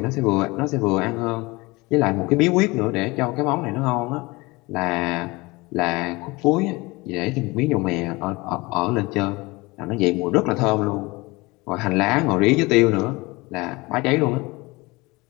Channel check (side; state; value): right; quieter; 23.4 dB